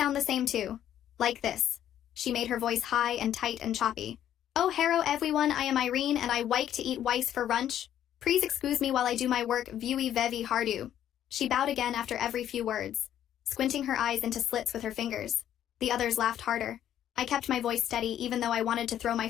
the same too. Like this." She made her voice high and tight and choppy. "Oh, hello everyone, I am Irene and I like to eat rice for lunch. Please excuse me while I do my work very hardu." She bowed again after every few words, squinting her eyes into slits with her fingers. The others laughed harder. I kept my voice steady even though I wanted to throw my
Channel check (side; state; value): right; quieter; 10.9 dB